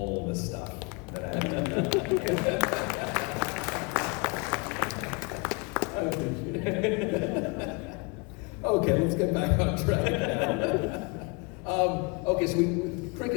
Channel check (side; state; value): right; quieter; 29.9 dB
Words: the stuff that I have. I appreciate it. Okay, let's get back on track. Okay, so